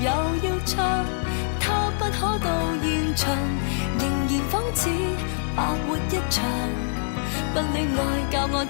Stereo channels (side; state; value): right; silent; digital silence